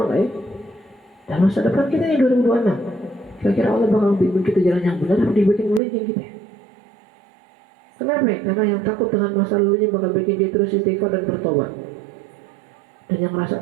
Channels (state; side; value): drops out; left; at 5.8 s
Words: nggak ya? Dan masa depan kita yang 2026, kira-kira Allah bakal bimbing kita jalan yang benar atau dibikin melenceng kita? Kenapa? Karena yang takut dengan masa lalunya bakal bikin dia terus istighfar dan bertobat. Dan yang rasa